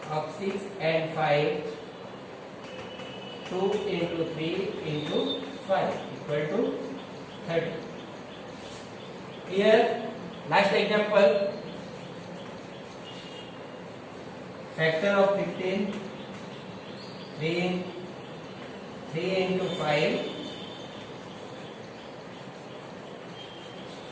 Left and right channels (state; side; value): identical; both; correlation 1.00